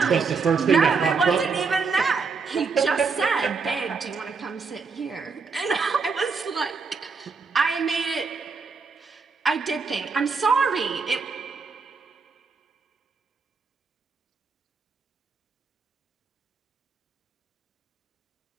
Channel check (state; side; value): quieter; left; 4.9 dB